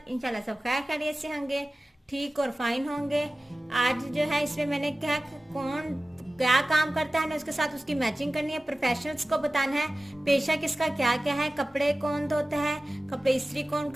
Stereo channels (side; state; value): both; normal; correlation 0.96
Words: इंशाल्लाह सब खैर खैरियत से होंगे, ठीक और फाइन होंगे। आज जो है इसमें मैंने क्या कौन क्या काम करता है ना उसके साथ उसकी मैचिंग करनी है। प्रोफेशनल्स को बताना है पेशा किसका क्या क्या है, कपड़े कौन धोता है, कपड़े इस्त्री कौन